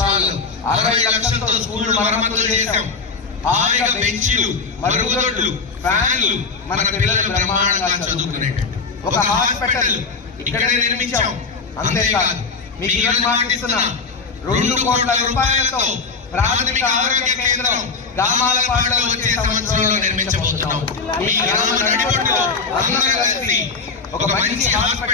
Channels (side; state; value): right; quieter; 4.7 dB